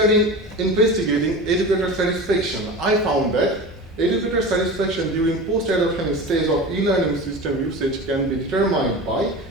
investigating educator satisfaction, I found that educator satisfaction during post-adoption stage of e-learning system usage can be determined by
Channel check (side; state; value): both; normal; correlation 0.31